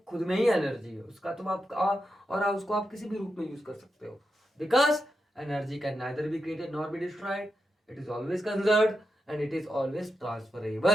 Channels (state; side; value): normal; both; correlation 0.87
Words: खुद में ही एनर्जी है उसका, तो आप और आप उसको आप किसी भी रूप में यूज कर सकते हो, because energy can neither be created nor be destroyed, it is always conserved and it is always